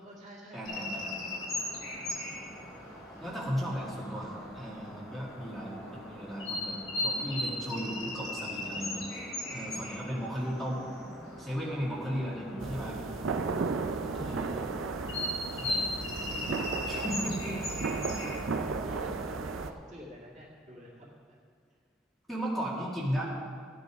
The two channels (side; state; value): both; normal; correlation 0.51